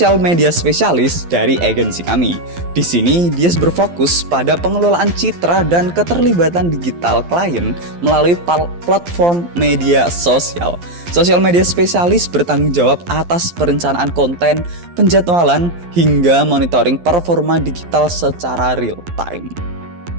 media spesialis dari agensi kami. Di sini, Dias berfokus pada pengelolaan citra dan keterlibatan digital klien melalui platform media sosial. Sosial media spesialis bertanggung jawab atas perencanaan konten, penjadwalan, hingga monitoring performa digital secara real time.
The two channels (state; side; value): late; left; 12 ms